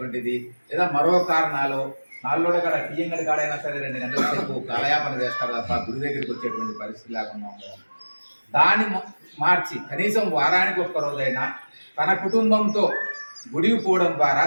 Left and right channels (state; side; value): inverted; both; correlation -1.00